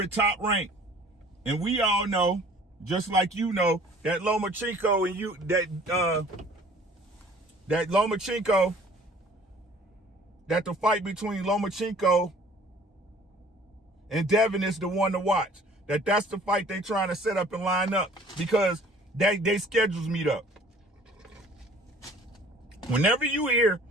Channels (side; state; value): both; normal; correlation 0.52